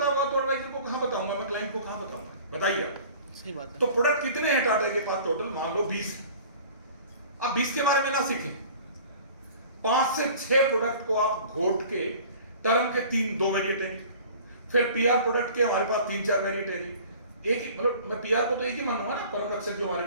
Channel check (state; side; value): inverted; both; correlation -0.46